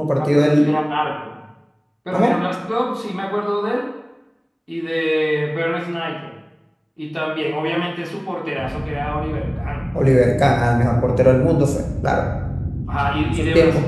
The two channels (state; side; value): identical; both; correlation 1.00